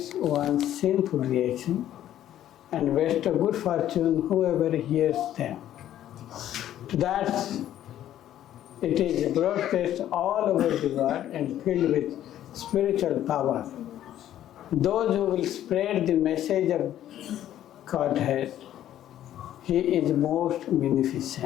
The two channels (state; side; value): quieter; right; 11.9 dB